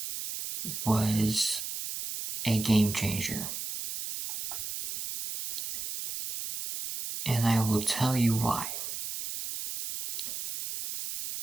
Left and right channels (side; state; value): right; noise; hiss, 6 dB below the sound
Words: was a game changer. And I will tell you why.